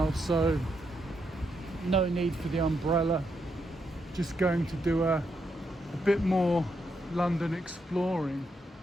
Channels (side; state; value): both; normal; correlation 0.80